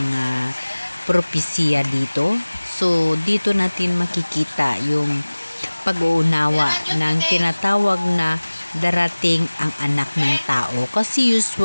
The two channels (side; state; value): both; inverted; correlation -1.00